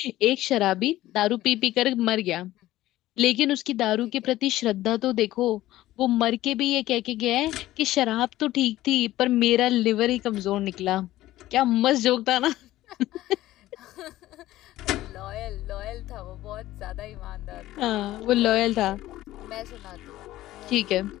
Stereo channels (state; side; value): quieter; right; 15.5 dB